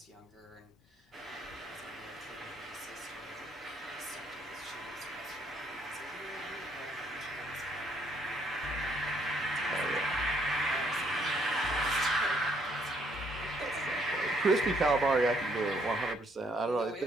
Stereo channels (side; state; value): both; normal; correlation 0.69